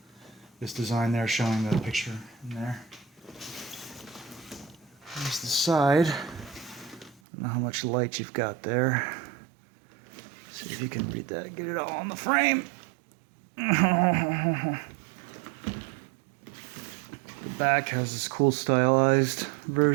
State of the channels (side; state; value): left; drops out; at 7.2 s